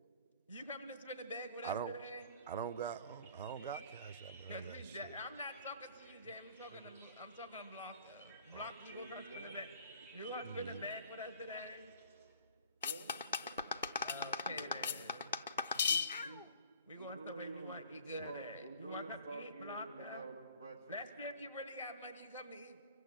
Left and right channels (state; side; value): inverted; both; correlation -0.51